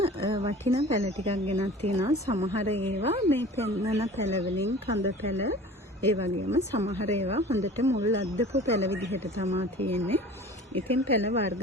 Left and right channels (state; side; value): normal; both; correlation 0.42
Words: වටිනා පැල ටිකක් ගෙනත් තියෙනවා. සමහර ඒවා මේ පෙන්නන පැල වලින් කඳ පැල, ඒ වගේම සමහර ඒවා හොඳට මුල් අද්දපු පැල විදිහට තමයි තියෙන්නේ. ඉතින් පැල වර්ග